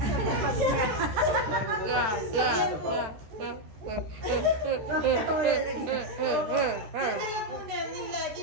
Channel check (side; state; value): left; late; 13 ms